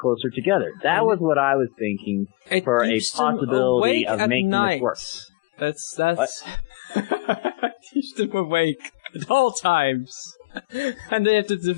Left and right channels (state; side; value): quieter; right; 22.9 dB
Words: together. That was what I was thinking for a possibility of making this work. That's keeps them awake at all times. And they have to